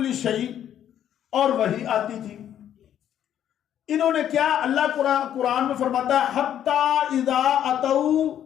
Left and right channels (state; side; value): quieter; right; 10.3 dB